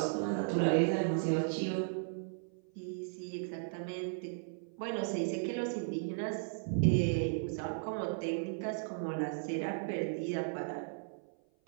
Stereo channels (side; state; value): left; silent; 54 dB below the other